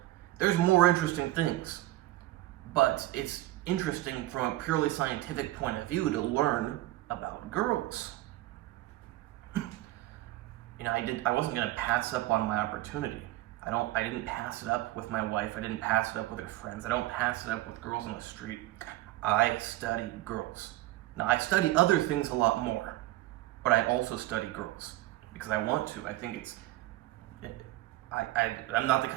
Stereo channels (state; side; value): quieter; left; 17.1 dB